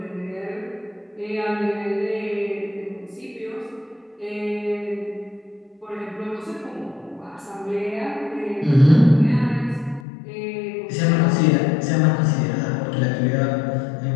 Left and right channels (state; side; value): drops out; right; at 10.1 s